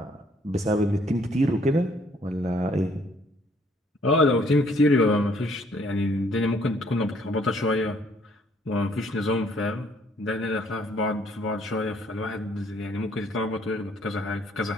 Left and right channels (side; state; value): both; normal; correlation 0.64